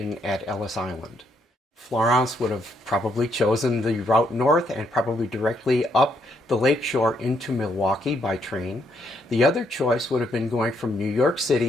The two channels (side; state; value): both; normal; correlation 0.74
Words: at Ellis Island. Florence would have probably chosen the route north and probably directly up the lakeshore into Milwaukee by train. The other choice would have been going from New York